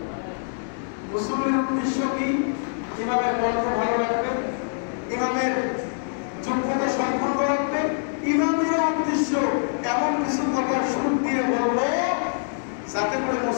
মুসল্লির উদ্দেশ্য কি? ইমামের কণ্ঠ ভালো রাখবে, ইমামের যোগ্যতা সম্পন্ন রাখবে। ইমামের উদ্দেশ্য এমন কিছু কথা সুর দিয়ে বলবো যাতে করে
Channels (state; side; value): silent; right; 62 dB below the other